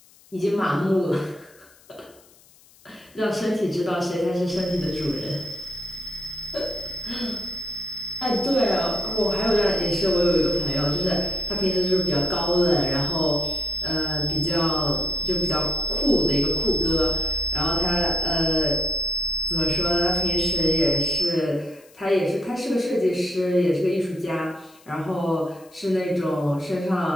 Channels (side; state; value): left; noise; hiss, 27 dB below the sound